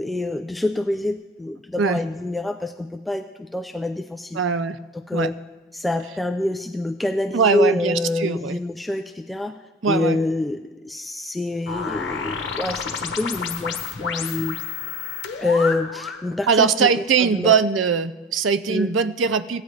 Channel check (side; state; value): both; normal; correlation 0.38